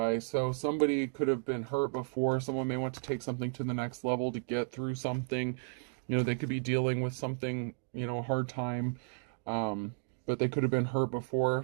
So somebody could have been hurt before. Someone may want to take something to the next level to get through something. You know, they could be dealing with something, you know, a hard time. But they could have been hurt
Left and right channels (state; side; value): silent; left; digital silence